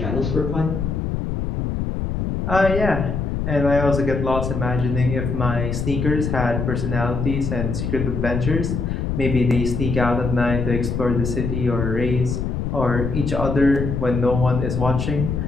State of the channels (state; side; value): noise; left; rumble, 2 dB below the sound